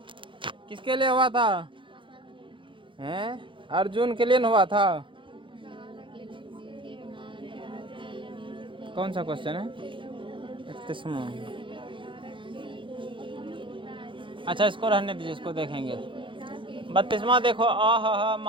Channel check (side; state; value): left; late; 0.24 ms